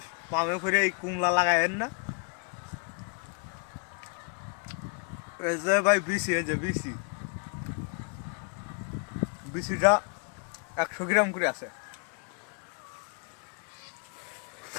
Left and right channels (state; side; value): quieter; right; 37.5 dB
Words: পামে করে এই কুমলা লাগাবেন না। এই যে ভাই বিসি, এই যে বিসি, বিসিটা 100 গ্রাম করে আছে।